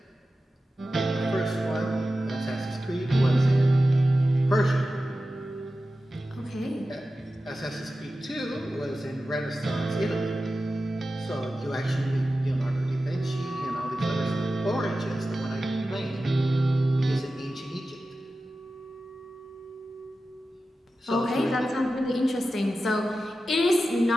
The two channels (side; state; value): both; normal; correlation 0.93